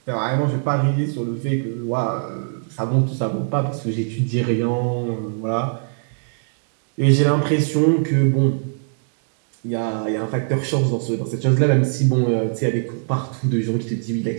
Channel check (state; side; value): silent; left; digital silence